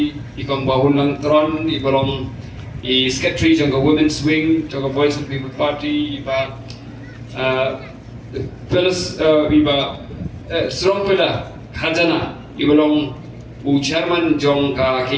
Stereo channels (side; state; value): both; identical; correlation 1.00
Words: ikong bahun lang tron, ibalong secretary jong ke women's wing, jong ke Voice of the People Party, iba strong pillar, khajana, ibalong chairman jong ke